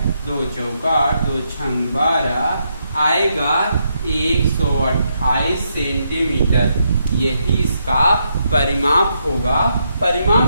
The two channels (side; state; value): both; inverted; correlation -0.79